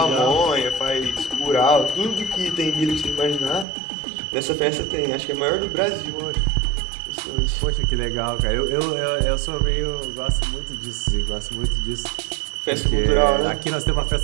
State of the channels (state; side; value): drops out; left; at 3.7 s